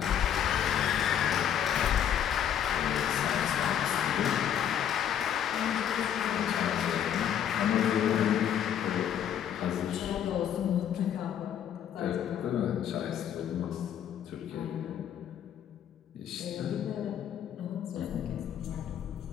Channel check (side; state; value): right; quieter; 9.5 dB